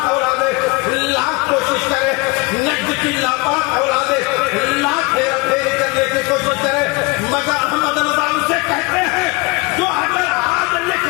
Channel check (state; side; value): quieter; right; 25.8 dB